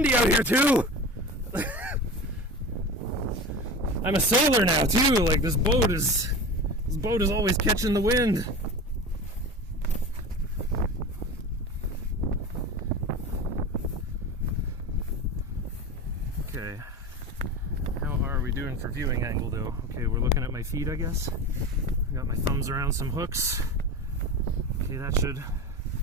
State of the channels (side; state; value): both; normal; correlation 0.30